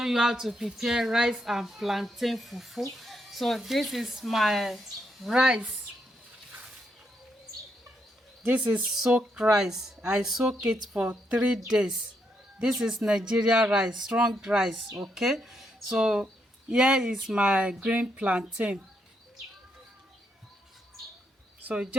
you how to prepare rice and plantain fufu. So this is my rice. This is soaked rice. I soak it for 3 days. This is Nigerian rice, strong rice. Okay, so here is my green plantain. So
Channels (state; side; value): normal; both; correlation 0.79